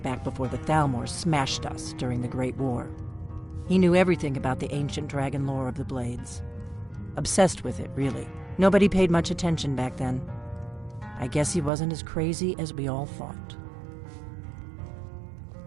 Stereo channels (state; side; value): drops out; left; at 11.7 s